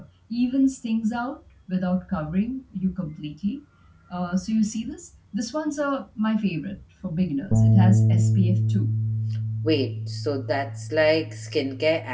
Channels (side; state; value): both; identical; correlation 1.00